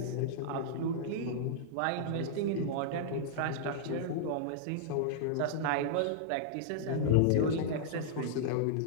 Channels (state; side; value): different; both; correlation -0.01